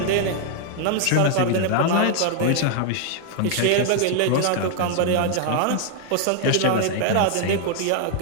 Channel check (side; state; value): both; different; correlation 0.00